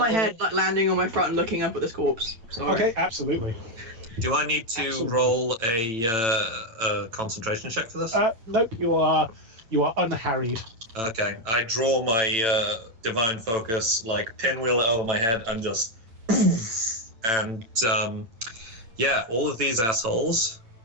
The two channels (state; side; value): late; left; 8.9 ms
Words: roll- head, like landing on my front and looking up at this corpse. Sorry. Okay, absolutely. Do I need to Absolutely. roll a concentration check for this? Nope, you are unharried. Okay, I draw my divine focus, like pinwheel it over my head, and just, and yeah, all of these assholes,